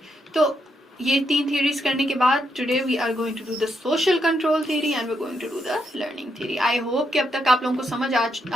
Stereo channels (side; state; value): both; normal; correlation 0.79